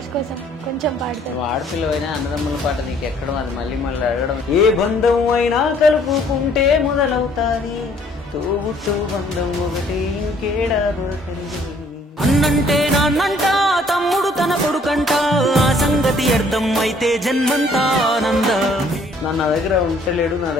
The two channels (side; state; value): both; normal; correlation 0.61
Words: కోసం కొంచెం పాడతారు. ఆడపిల్లవైనా అన్నదమ్ముల పాట నీకు ఎక్కడం అది మళ్ళీ మళ్ళీ అడగడం. ఏ బంధం అయినా కలుపుకుంటే మొదలవుతాది తోబుట్టు బంధం ఒకటి ఇంకేడా దొరకండి. అన్నంటే నాన్నంట తమ్ముడు తన కొడుకంట ఆ సంగతి అర్థం అయితే జన్మంతా ఆనంద. నా దగ్గర ఉంటలేడు నా